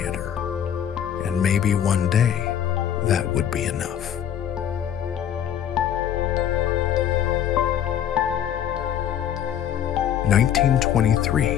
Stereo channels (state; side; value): quieter; right; 9.7 dB